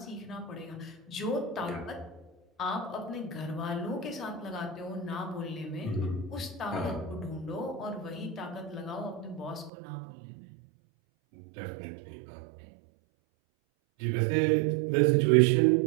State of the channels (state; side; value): drops out; left; at 9.7 s